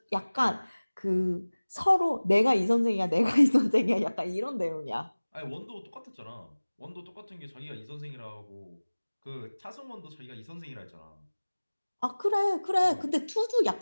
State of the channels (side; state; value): both; inverted; correlation -1.00